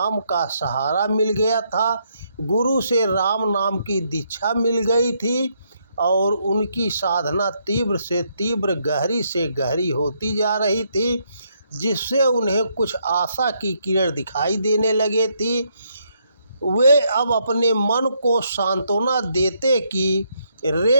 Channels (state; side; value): inverted; both; correlation -0.75